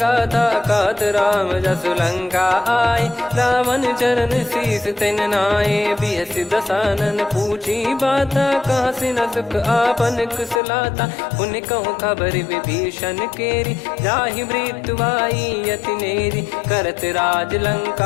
कहत राम जसु लंका आए, रावण चरण शीस तिन नाये। बिहस दसानन पूछी बाता, कहाँ से न सुख आपन कुशलाता। पुन कहूँ खबर विभीषण केरी, जाहि मृत्यु आई अति नेरी। करत राज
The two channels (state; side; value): drops out; right; at 10.6 s